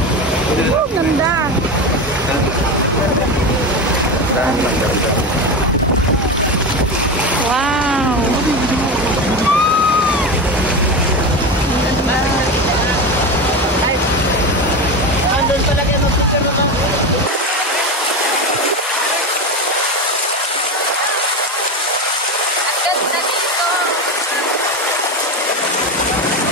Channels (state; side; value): normal; both; correlation 0.20